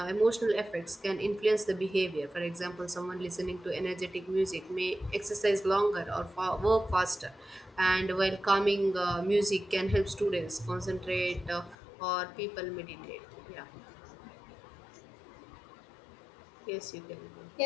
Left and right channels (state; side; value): drops out; right; at 11.8 s